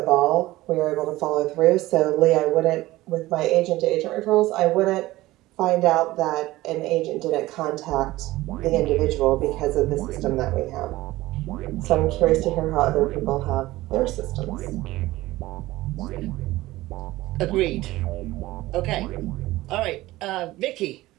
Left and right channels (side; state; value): left; quieter; 17.7 dB